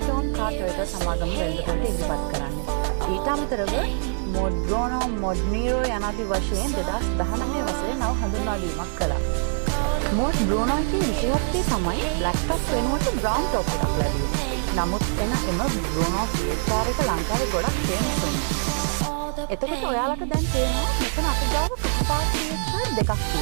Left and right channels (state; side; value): silent; left; 62 dB below the other